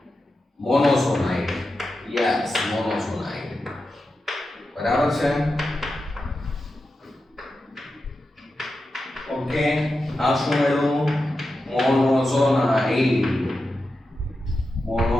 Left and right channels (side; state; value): both; normal; correlation 0.90